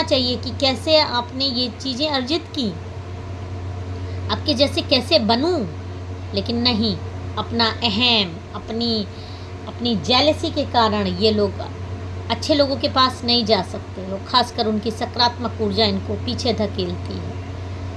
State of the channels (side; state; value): both; identical; correlation 1.00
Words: चाहिए कि कैसे आपने ये चीज़ें अर्जित की, आपके जैसे कैसे बनूं। लेकिन नहीं, अपना अहम, अपनी जेलसी के कारण ये लोग अच्छे लोगों के पास नहीं जा सकते। और ख़ासकर उनकी सकारात्मक ऊर्जा इनको पीछे धकेलती है।